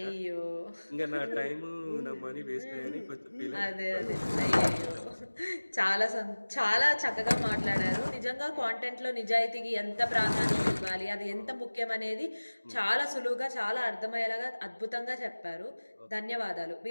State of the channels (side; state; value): both; inverted; correlation -1.00